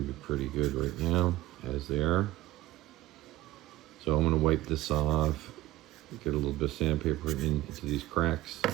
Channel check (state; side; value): quieter; left; 16.1 dB